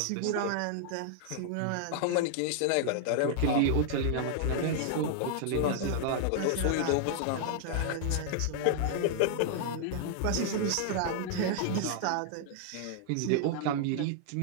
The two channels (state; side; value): different; both; correlation -0.01